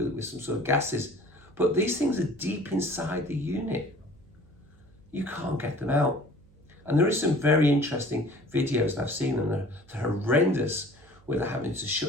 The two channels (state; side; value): noise; right; hum, 27 dB below the sound